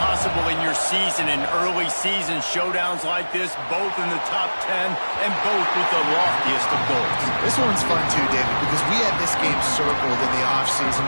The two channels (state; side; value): inverted; both; correlation -1.00